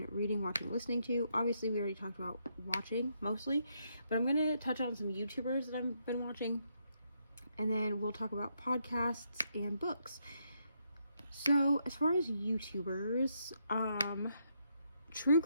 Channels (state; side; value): inverted; both; correlation -0.77